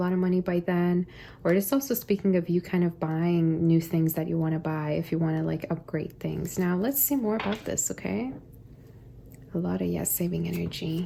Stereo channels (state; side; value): identical; both; correlation 1.00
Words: of money by then. Or it's also speaking of you kind of buying new things that you want to buy if you want to like upgrade things. Now, let's see more about this, okay? A lot of, yes, saving